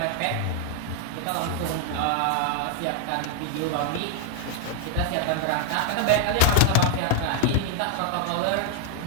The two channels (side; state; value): both; different; correlation 0.00